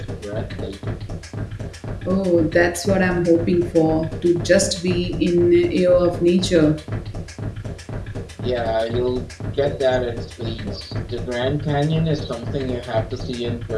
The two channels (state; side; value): identical; both; correlation 1.00